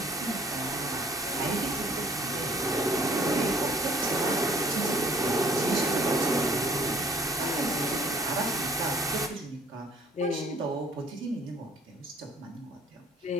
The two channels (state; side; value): normal; both; correlation 0.57